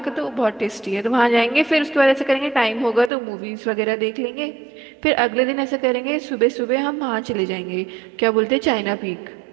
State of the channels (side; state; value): left; drops out; at 3.1 s